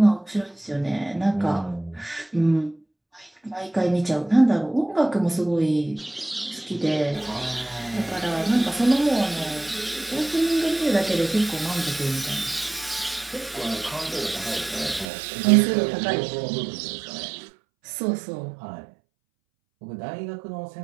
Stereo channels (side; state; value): left; drops out; at 15.1 s